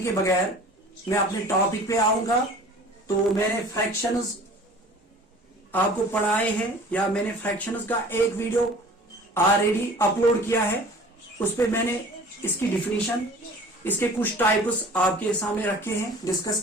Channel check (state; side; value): normal; both; correlation 0.45